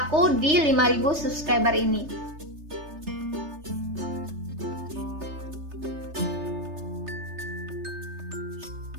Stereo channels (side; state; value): left; late; 3.3 ms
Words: di 5000 subscriber ini.